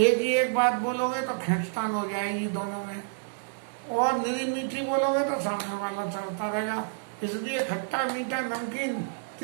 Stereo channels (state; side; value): silent; left; digital silence